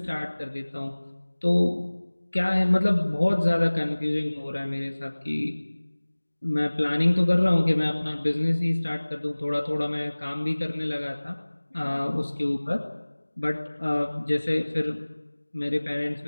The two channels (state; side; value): inverted; both; correlation -1.00